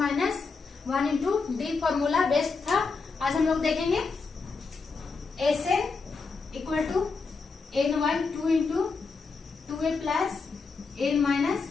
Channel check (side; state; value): right; quieter; 4.5 dB